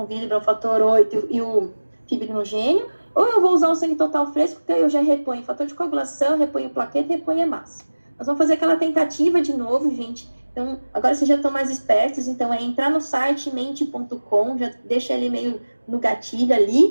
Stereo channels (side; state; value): both; inverted; correlation -1.00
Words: Willebrand, o fator 8 e o fibrinogênio, ou eu vou usar o sangue total fresco, que aí eu já reponho fator de coagulação, reponho plaqueta e reponho hemácia. Nós vamos fazer aquela tentativa de novo, gente. Então, agora vocês já estão mais espertos, então é entrar no site mente.com, já deixa ele meio no gatilho